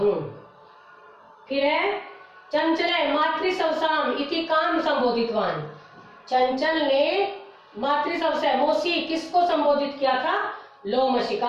फिर है चंचल मातृसवसाम इति काम संबोधितवान। चंचल ने मातृसवसा मौसी किसको संबोधित किया था?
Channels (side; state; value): both; identical; correlation 1.00